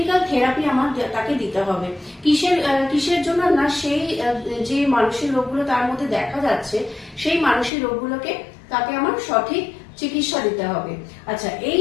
থেরাপি আমার তাকে দিতে হবে। কিসের জন্য না, সেই যে মানসিক রোগগুলো তার মধ্যে দেখা যাচ্ছে, সেই মানসিক রোগগুলোকে তাকে আমার সঠিক চিকিৎসা দিতে হবে। আচ্ছা, এই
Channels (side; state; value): right; drops out; at 7.7 s